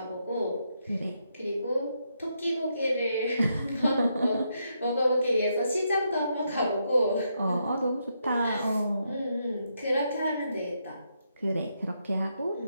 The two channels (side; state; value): both; inverted; correlation -0.79